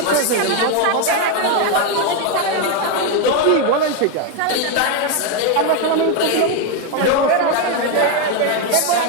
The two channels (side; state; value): both; different; correlation 0.02